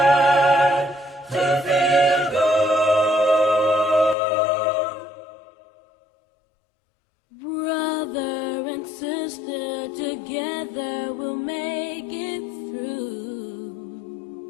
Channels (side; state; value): right; drops out; at 4.2 s